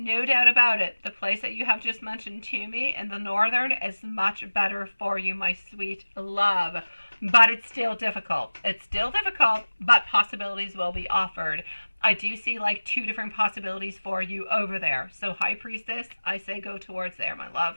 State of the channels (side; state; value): both; inverted; correlation -1.00